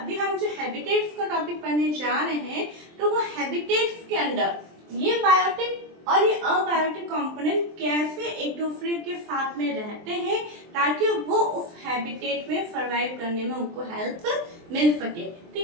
जो हैबिटेट्स का टॉपिक पढ़ने जा रहे हैं, तो वो हैबिटेट्स के अंदर ये बायोटिक और ये अबायोटिक कंपोनेंट कैसे एक दूसरे के साथ में रहते हैं ताकि वो उस हैबिटेट में सर्वाइव करने में उनको हेल्प मिल सके।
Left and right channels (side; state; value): left; late; 23 ms